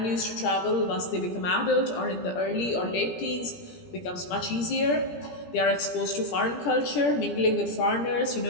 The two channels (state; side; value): late; right; 17 ms